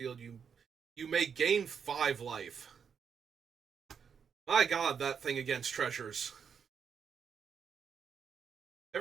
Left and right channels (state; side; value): quieter; left; 6.9 dB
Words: you may gain 5 life. My god, that thing against treasures.